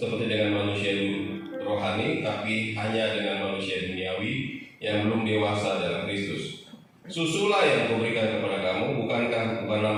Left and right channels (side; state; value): both; identical; correlation 1.00